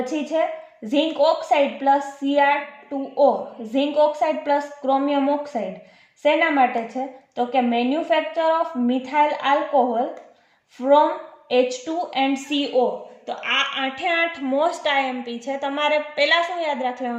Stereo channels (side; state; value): both; identical; correlation 1.00